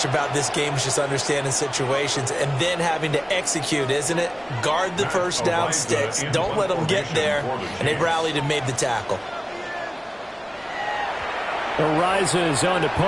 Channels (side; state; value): both; identical; correlation 1.00